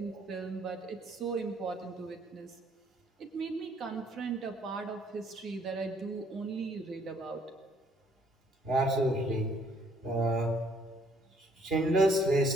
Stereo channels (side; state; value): both; normal; correlation 0.64